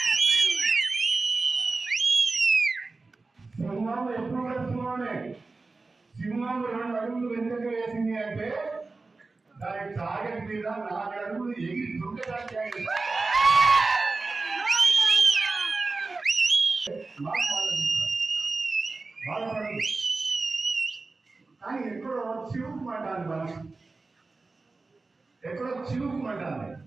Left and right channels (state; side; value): quieter; left; 3.7 dB